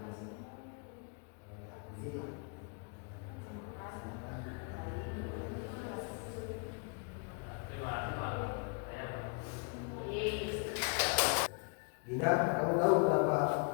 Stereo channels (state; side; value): quieter; right; 38.1 dB